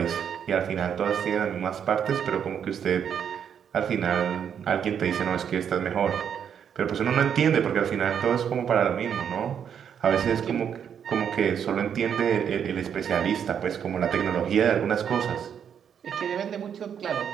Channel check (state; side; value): quieter; left; 8.1 dB